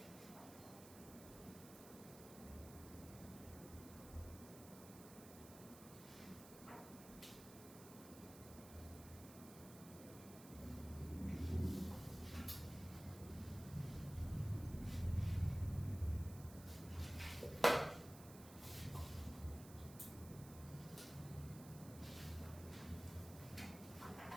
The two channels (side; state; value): right; noise; hiss, 15 dB below the sound